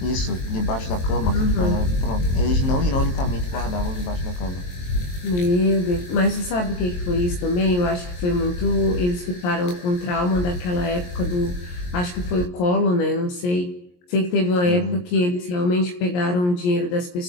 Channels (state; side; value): late; right; 23 ms